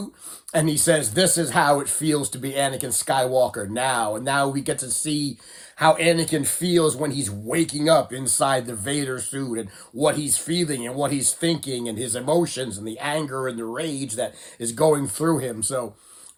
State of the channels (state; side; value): identical; both; correlation 1.00